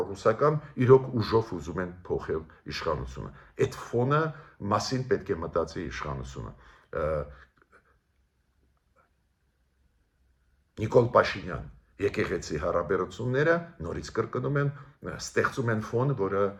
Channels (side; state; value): both; identical; correlation 1.00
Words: իրոք ուժով ուզում են փոխել իշխանությունը։ Այդ ֆոնը մասին պետք է մտածի իշխանությունը։ Նիկոլ Փաշինյան եկեղեցի հարաբերությունները, նորից կրկնում եմ, ստեղծում են ֆոն, որը